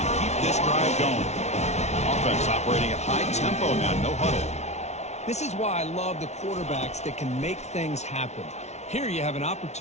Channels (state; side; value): late; right; 0.32 ms